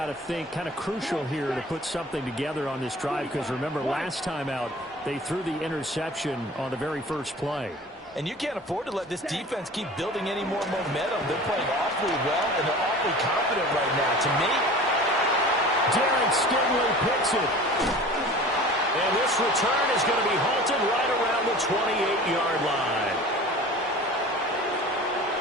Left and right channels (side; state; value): both; normal; correlation 0.41